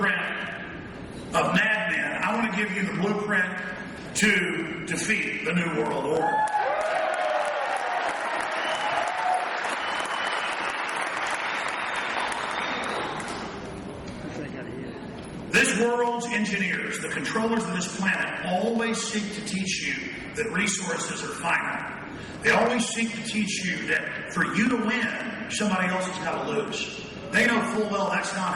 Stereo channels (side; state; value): both; identical; correlation 1.00